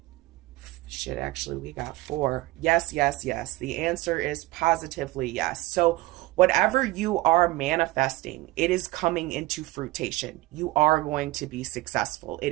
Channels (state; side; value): quieter; left; 19.1 dB